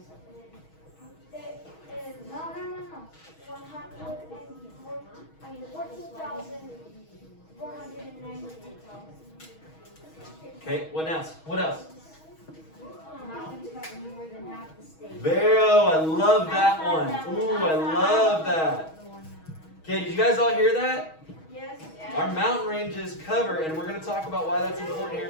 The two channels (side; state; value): right; late; 6.3 ms